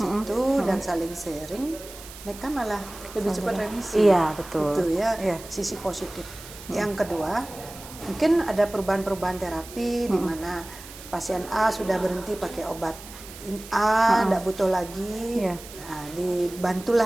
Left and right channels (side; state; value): right; noise; hiss, 16 dB below the sound